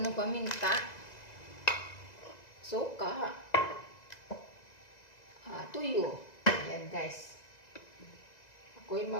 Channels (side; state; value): right; late; 2.0 ms